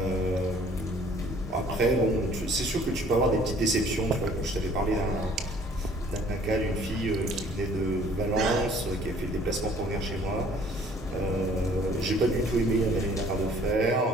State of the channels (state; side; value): normal; both; correlation 0.56